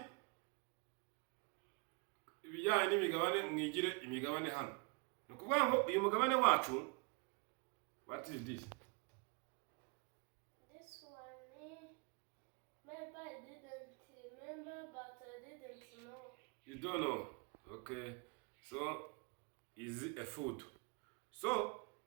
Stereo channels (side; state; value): left; quieter; 31.3 dB